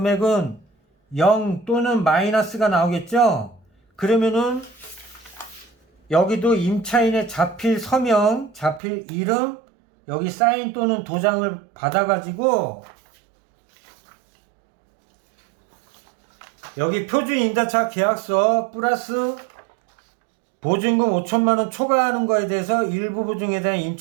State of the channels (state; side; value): drops out; left; at 8.8 s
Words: 0 또는 마이너스가 나오겠죠. 그러면은 여기도 임차인의 자필 서명, 자필 이름, 여기 사인 또는 도장을 받아가지고 여기 표준 임대차 계약서 플러스 보증금 5천만원 초과하는 거에 대해서 일부 보증에 대한